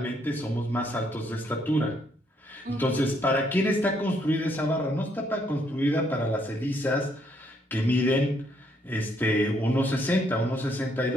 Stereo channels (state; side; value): normal; both; correlation 0.71